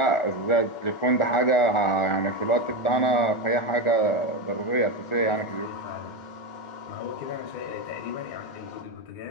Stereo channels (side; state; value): right; late; 1.4 ms